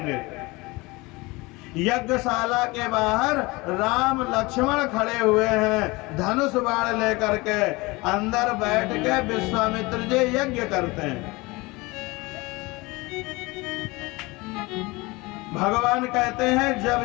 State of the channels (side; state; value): right; quieter; 23.4 dB